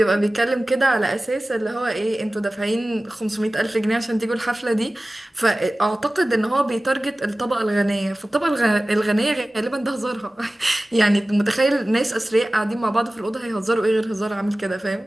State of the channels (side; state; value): both; normal; correlation 0.97